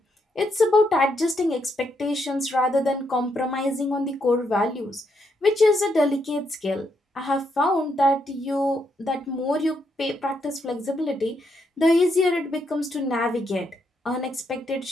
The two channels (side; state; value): both; normal; correlation 0.78